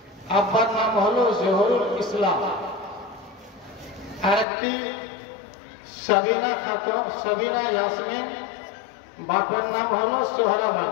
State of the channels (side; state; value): right; drops out; at 4.5 s